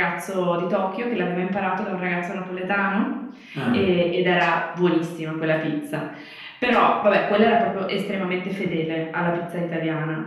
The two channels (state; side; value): identical; both; correlation 1.00